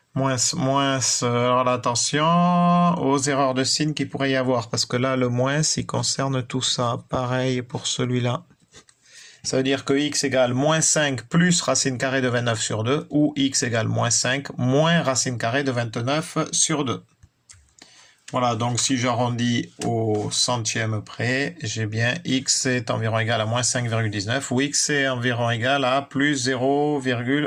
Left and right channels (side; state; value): both; identical; correlation 1.00